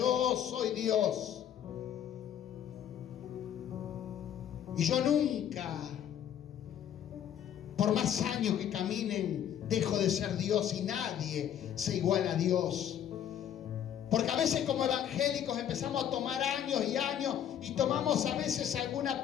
soy Dios. Y yo nunca, por más años que caminen, dejo de ser Dios, y nadie se iguala a Dios. Porque a veces como evangélicos empezamos a tomar años y años, y tomamos a veces alguna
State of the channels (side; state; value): right; quieter; 9.9 dB